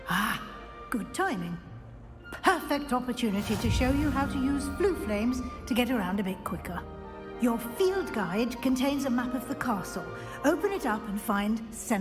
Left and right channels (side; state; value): both; identical; correlation 1.00